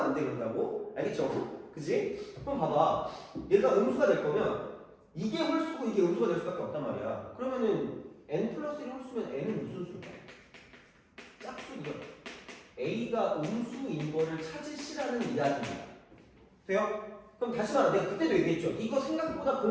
안 돼 그런다고? 알겠죠? 그치? 그럼 봐봐. 얘가 음수가 될 거면 이게 홀수고 이게 음수가 될 수밖에 없단 말이야. 그러면은 n 플러스 1 홀수면 n은 무슨 수일까? 짝수이죠. a가 음수인 거를 찾으시라는 이야기입니다. 돼요? 그럼 다시 말해. 내가 그때도 얘기했죠. 이거 생각보다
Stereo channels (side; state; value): both; identical; correlation 1.00